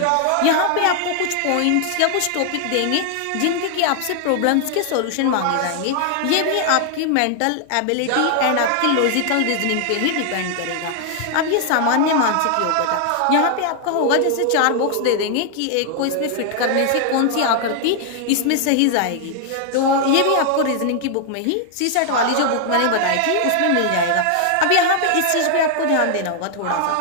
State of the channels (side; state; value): both; different; correlation 0.00